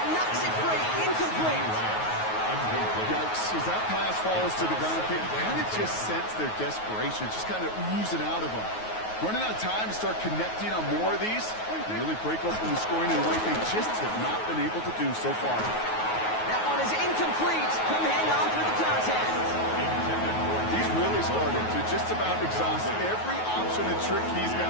knocks it free. Incomplete. Yikes. As that pass falls to the ground, you kind of just sense their desperation, just kind of oozing out of them. Running out of time to start connecting on more of these and really break open the scoring in a way they just have not been able to do so far. That one is incomplete. Couldn't hang on through the contact. He's really started to just about exhaust every option and trick he's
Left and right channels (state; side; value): late; right; 9.4 ms